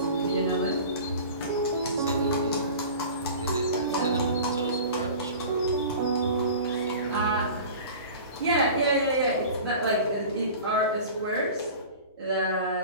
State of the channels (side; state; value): both; inverted; correlation -0.38